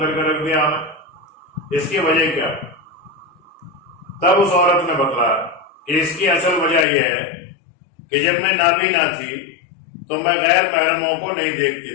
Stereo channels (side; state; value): right; drops out; at 6.9 s